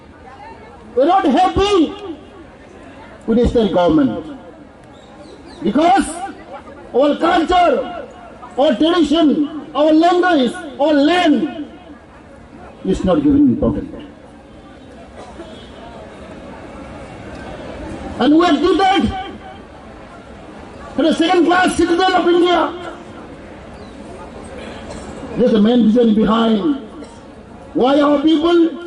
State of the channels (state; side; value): identical; both; correlation 1.00